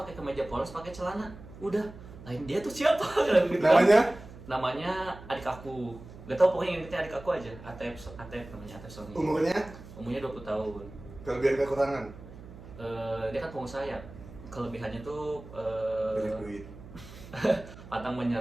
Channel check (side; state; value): right; noise; hum, 16 dB below the sound